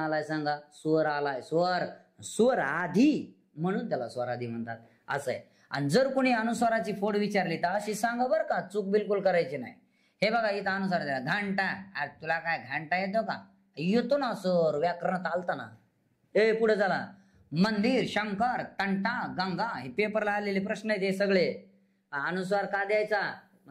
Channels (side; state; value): both; identical; correlation 1.00